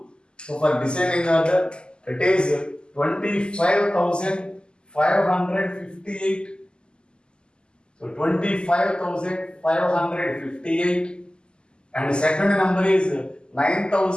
So for descending order, it is 25,558. So 25,558. And the second number is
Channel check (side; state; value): right; late; 0.048 ms